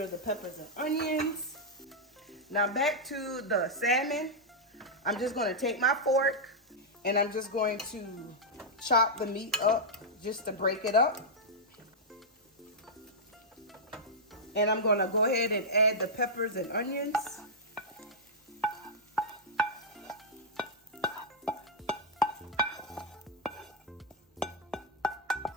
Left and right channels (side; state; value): both; normal; correlation -0.07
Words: the peppers and onions. Now back to the salmon. I'm just going to take my fork and I'm just going to chop the meat up just to break it up. And I'm going to go ahead and add the peppers and onions.